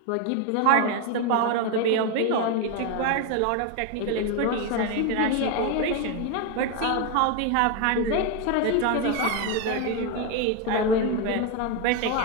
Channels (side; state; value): both; different; correlation 0.02